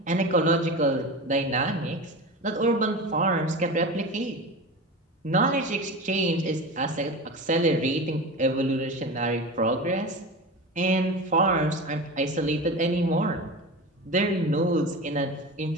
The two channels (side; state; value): both; normal; correlation 0.28